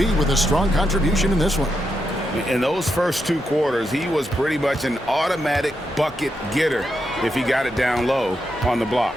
with a strong contribution in this one. In those first 2 quarters, he was pretty much an automatic bucket getter if he got it down low on the block.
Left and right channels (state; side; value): normal; both; correlation 0.84